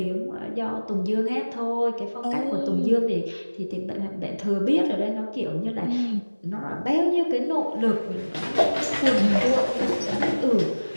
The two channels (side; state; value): both; inverted; correlation -1.00